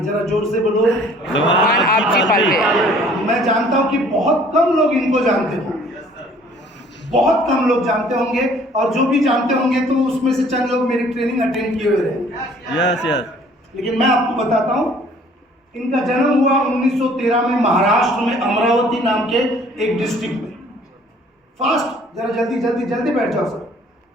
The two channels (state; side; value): normal; both; correlation 0.56